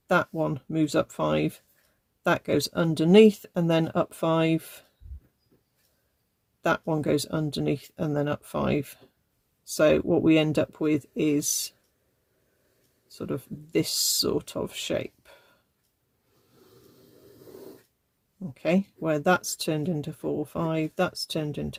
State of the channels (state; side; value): identical; both; correlation 1.00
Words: that one moves up 5, that goes underneath and then up 5, that one goes underneath and then up 5. So what we end up with is sort of this sort of shape. Okay, where that's turned into 4, 5, that's turned